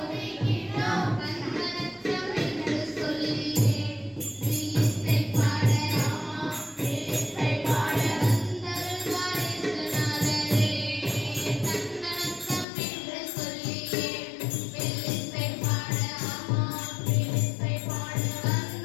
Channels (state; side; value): drops out; right; at 12.7 s